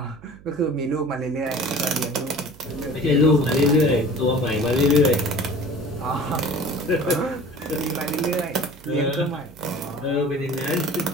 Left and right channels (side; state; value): right; noise; hum, 22 dB below the sound